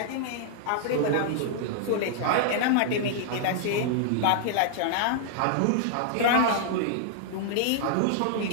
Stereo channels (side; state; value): both; different; correlation -0.01